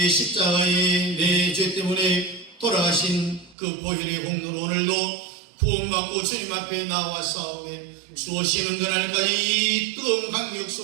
십자가에 내 죄 때문에 돌아가신 그 보혈의 공로로 오늘도 구원받고 주님 앞에 나와 싸우며 주 오시는 그날까지 이 뜨거운 강력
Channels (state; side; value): drops out; left; at 3.6 s